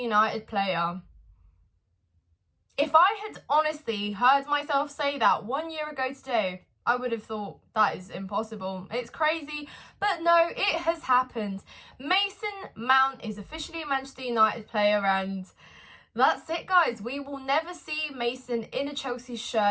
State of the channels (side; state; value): both; identical; correlation 1.00